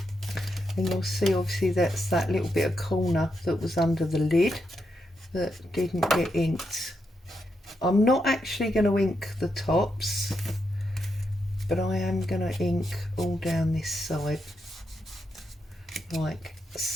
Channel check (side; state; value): both; normal; correlation 0.83